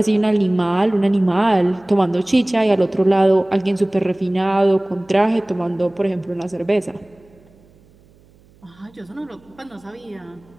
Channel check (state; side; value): noise; right; hum, 29 dB below the sound